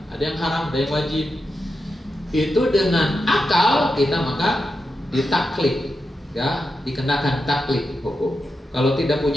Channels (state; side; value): normal; both; correlation 0.88